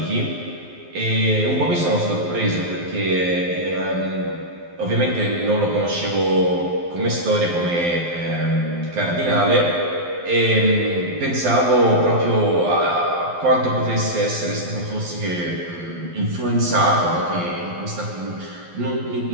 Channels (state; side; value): late; left; 12 ms